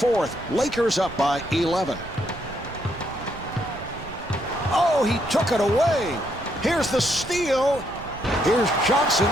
Lakers up by 11. Oh, he took it away. Here's the steal. Here's Johnson.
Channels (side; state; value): right; noise; rumble, 15 dB below the sound